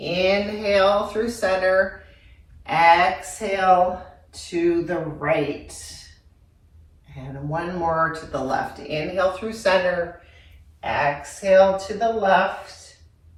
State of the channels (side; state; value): both; identical; correlation 1.00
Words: through center, exhale to the right. And 1 more to the left. Inhale through center, exhale to the left.